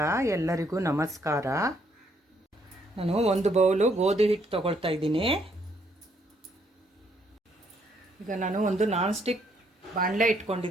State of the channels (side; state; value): both; normal; correlation 0.70